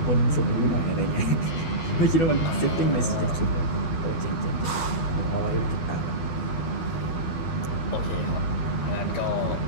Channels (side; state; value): right; late; 12 ms